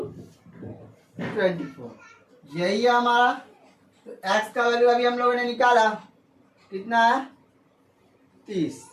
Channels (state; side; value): identical; both; correlation 1.00